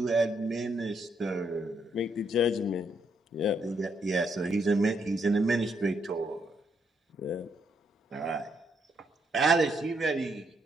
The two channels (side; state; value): both; normal; correlation 0.75